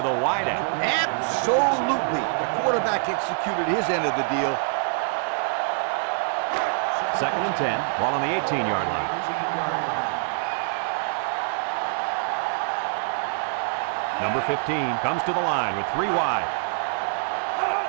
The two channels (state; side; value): silent; left; 62 dB below the other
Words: wideout. Absolutely. The quarterback executed his end of the deal. 2nd and 10. Ball on the 18-yard line. Number 15 comes to the line with 3 wide.